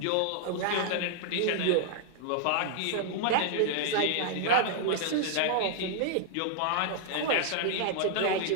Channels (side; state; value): both; different; correlation -0.01